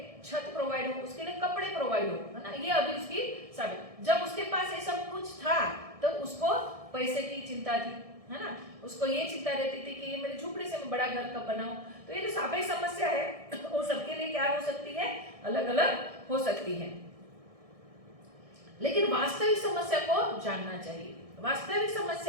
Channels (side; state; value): left; late; 1.6 ms